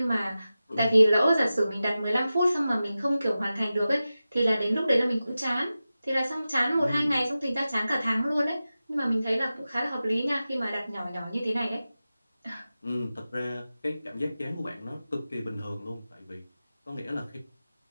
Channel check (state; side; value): inverted; both; correlation -0.94